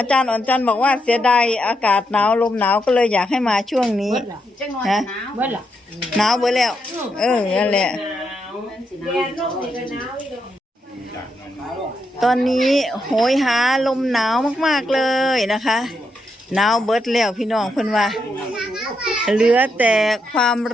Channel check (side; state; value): both; normal; correlation 0.81